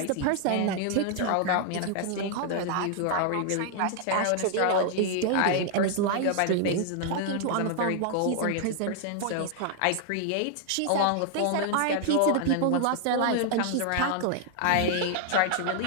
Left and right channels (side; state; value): both; different; correlation 0.00